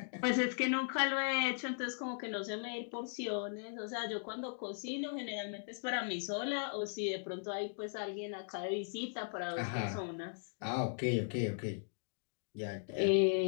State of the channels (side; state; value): right; silent; digital silence